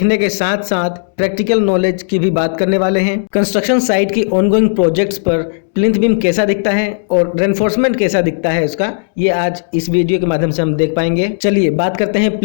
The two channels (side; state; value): right; silent; digital silence